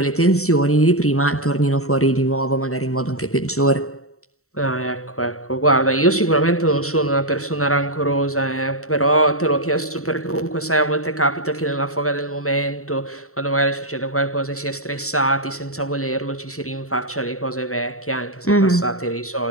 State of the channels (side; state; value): right; late; 0.64 ms